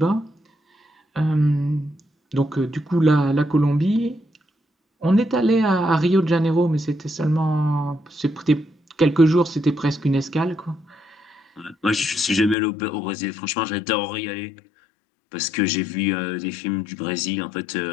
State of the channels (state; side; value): drops out; right; at 12.6 s